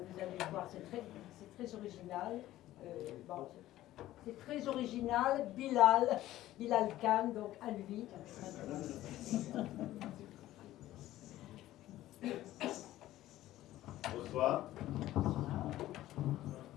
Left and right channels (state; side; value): quieter; right; 14.8 dB